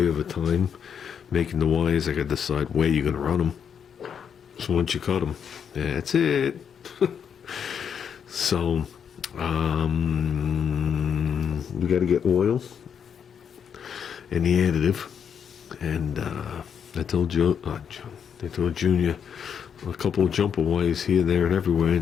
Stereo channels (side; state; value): right; quieter; 7.6 dB